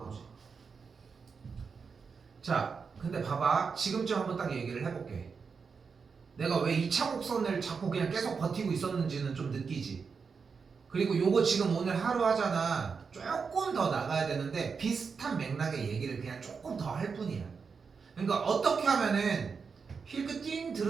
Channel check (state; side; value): quieter; left; 5.5 dB